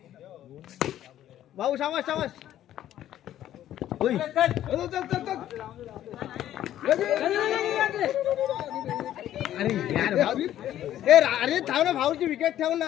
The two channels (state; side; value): quieter; right; 12.1 dB